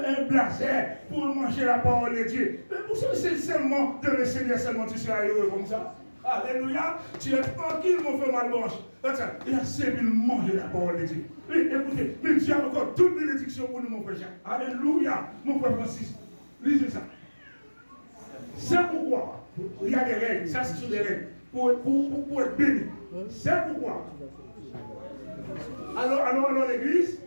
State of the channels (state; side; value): inverted; both; correlation -1.00